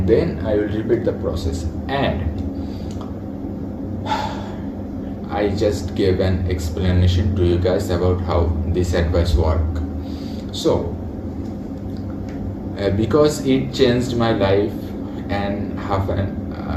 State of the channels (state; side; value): identical; both; correlation 1.00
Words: then I will repeat the process. And I just gave an explanation to you guys about how this advice works. So because it changed my life and half